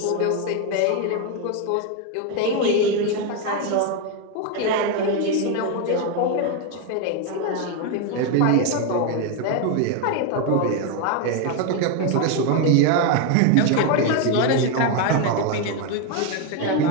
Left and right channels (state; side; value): different; both; correlation 0.02